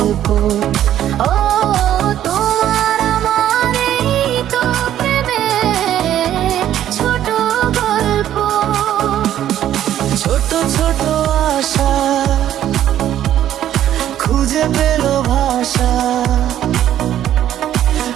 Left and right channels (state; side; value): quieter; left; 11.5 dB